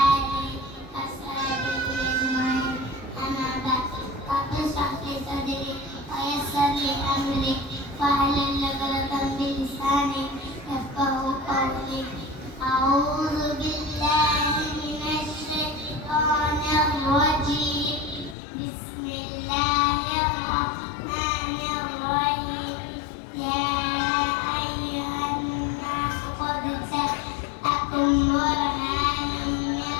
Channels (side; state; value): right; drops out; at 18.4 s